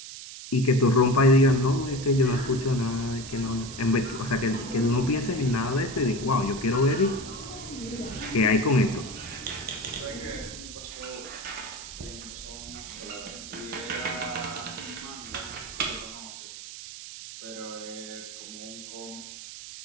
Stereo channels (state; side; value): noise; right; hiss, 12 dB below the sound